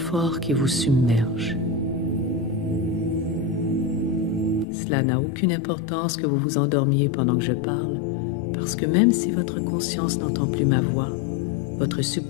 qui vous submerge. Cela n'a aucune importance que vous vous endormiez pendant que je parle, parce que même si votre conscience n'entend plus ma voix, votre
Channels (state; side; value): drops out; right; at 4.7 s